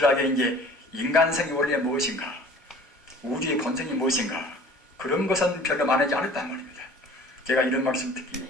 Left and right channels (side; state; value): both; normal; correlation 0.47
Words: 이제 인간성이 원래 무엇인가, 우주의 본성이 무엇인가 그런 것은 별로 말하지 않았단 말입니다. 제가 이런